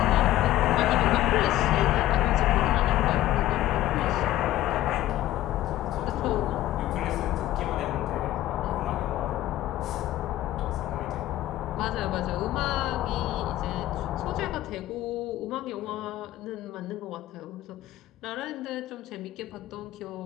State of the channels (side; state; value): right; quieter; 14.4 dB